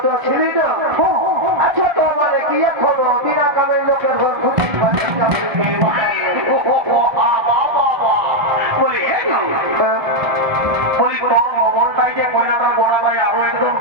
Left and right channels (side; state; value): left; late; 1.5 ms